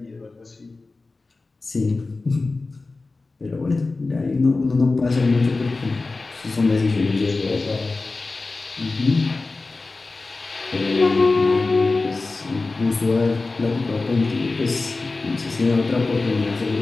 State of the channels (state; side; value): quieter; right; 3.6 dB